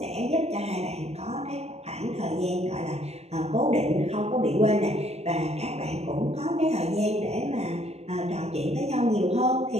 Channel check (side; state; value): left; late; 0.31 ms